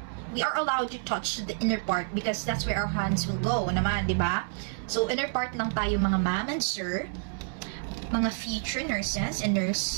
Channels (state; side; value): silent; left; 59 dB below the other